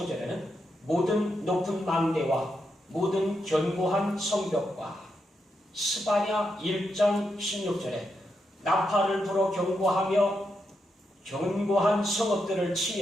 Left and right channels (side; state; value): both; normal; correlation 0.84